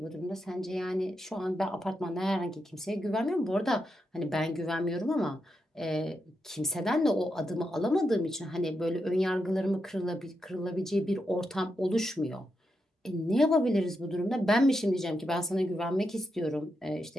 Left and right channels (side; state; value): both; normal; correlation 0.85